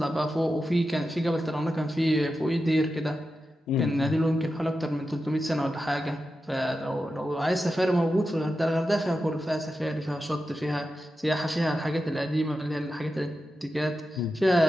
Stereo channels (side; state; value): both; normal; correlation 0.90